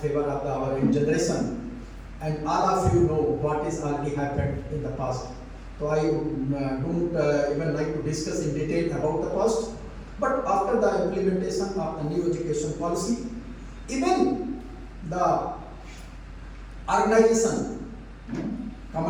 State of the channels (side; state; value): both; identical; correlation 1.00